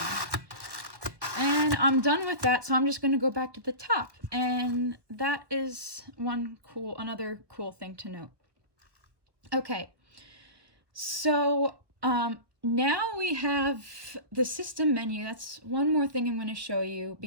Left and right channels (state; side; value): late; left; 1.2 ms